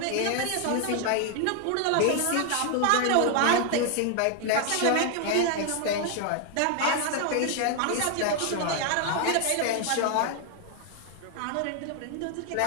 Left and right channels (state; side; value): different; both; correlation 0.00